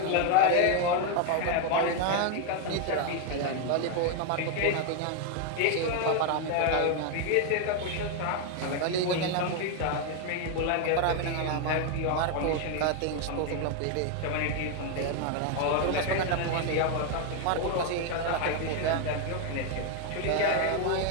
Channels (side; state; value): both; different; correlation 0.01